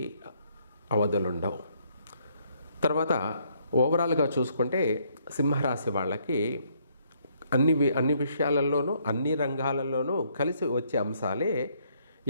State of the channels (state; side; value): inverted; both; correlation -0.69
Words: అవధులుండవు. తర్వాత ఓవరాల్గా చూసుకుంటే సింహరాశి వాళ్ళకి అన్ని విషయాలలోనూ అన్ని రంగాలలోనూ కలిసి వచ్చే అంశాలే